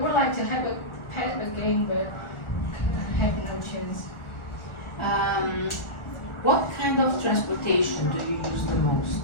would like to have a pet again, but I have no chance. What kind of transportation do you use the most?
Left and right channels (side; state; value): right; late; 1.4 ms